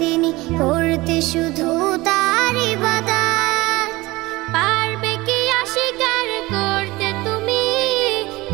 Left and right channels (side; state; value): left; quieter; 20.7 dB